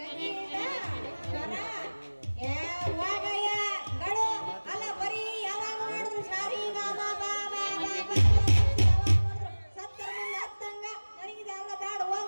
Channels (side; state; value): both; inverted; correlation -1.00